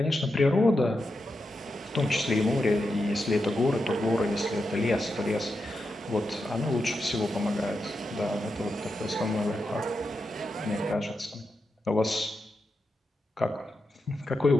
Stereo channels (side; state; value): both; normal; correlation 0.87